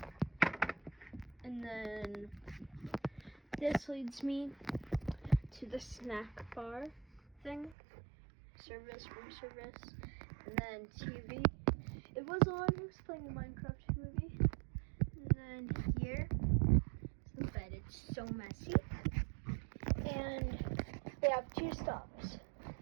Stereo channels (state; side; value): drops out; left; at 7.8 s